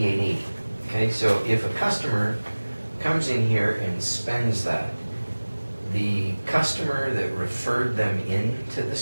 Okay, so if a customer comes in here and spends that, the customer that referred them into the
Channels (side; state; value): both; inverted; correlation -1.00